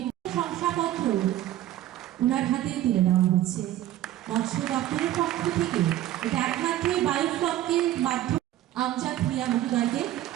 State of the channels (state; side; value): quieter; left; 13.5 dB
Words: শংসাপত্র ওনার হাতে তুলে দেওয়া হচ্ছে মৎস্য দপ্তরের পক্ষ থেকে। এটা একমাত্র বায়োফ্লকের মাধ্যমে আমজাদ মিয়া মহোদয়কে